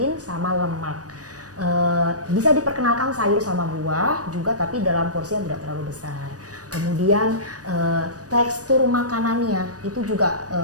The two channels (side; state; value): left; late; 0.67 ms